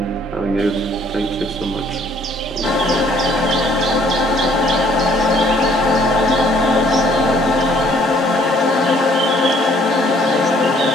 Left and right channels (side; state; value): both; normal; correlation 0.61